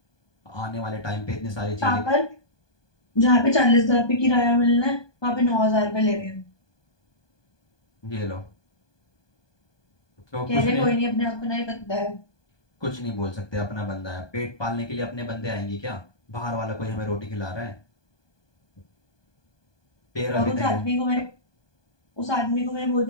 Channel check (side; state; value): right; late; 1.2 ms